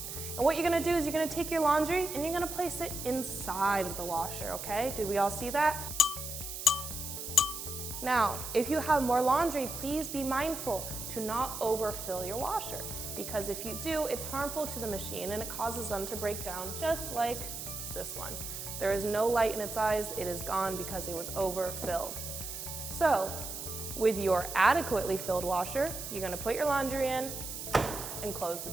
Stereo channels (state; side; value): noise; right; hiss, 7 dB below the sound